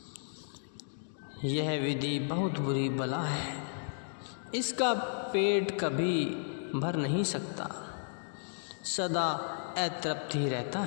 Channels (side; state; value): right; silent; digital silence